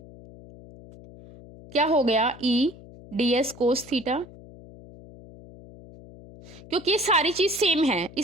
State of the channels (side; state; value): left; noise; hum, 19 dB below the sound